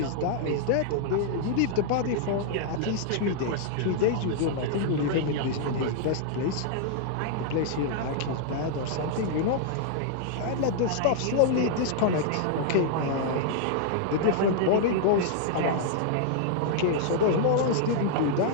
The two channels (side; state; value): both; different; correlation -0.01